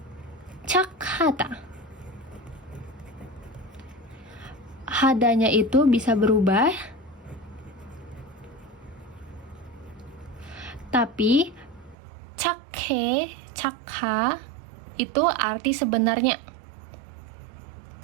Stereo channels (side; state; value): left; drops out; at 12.0 s